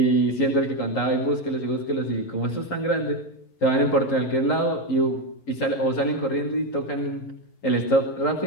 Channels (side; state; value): right; late; 11 ms